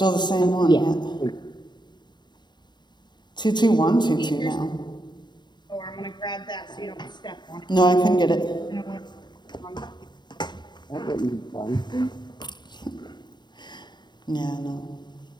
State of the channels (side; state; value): right; late; 0.21 ms